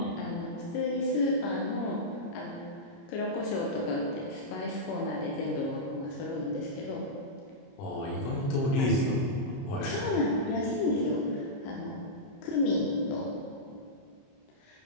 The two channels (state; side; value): late; right; 30 ms